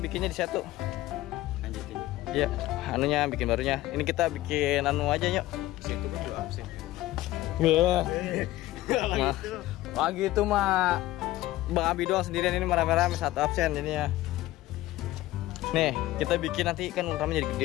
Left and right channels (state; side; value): quieter; right; 16.5 dB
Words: di satu. Lanjutin. Iya, anunya bikin barunya. Ini kita bikin anu aja, yuk. Itu kan juga absen. Wah gitu mah Bang Abi doang sendirian, ini merame-rame satu absen jadinya. Nih kita bikin nanti kan Ultraman jadi